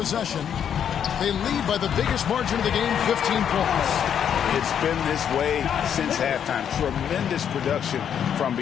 They lead by the biggest margin of the game, 15 points. It's been this way since halftime. Tremendous production from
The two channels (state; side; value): quieter; right; 8.6 dB